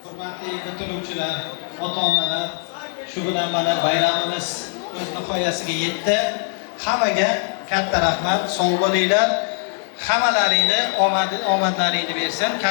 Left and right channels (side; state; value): right; silent; digital silence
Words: Hurmatli bitiruvchilar, ota-onalar, shu bilan mana bayramimiz o'z nihoyasiga yetdi. Hammaga katta rahmat, sog' bo'linglar. Hammalaringni omadlaringni bersam